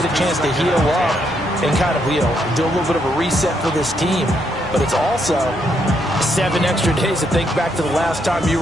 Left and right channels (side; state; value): both; normal; correlation 0.75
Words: a chance to heal up and kind of, do a little bit of a reset for this team. But it's also 7 extra days to think back to the last time you